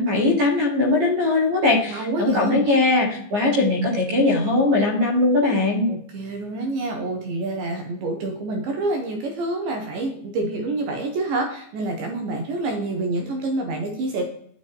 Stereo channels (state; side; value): late; left; 14 ms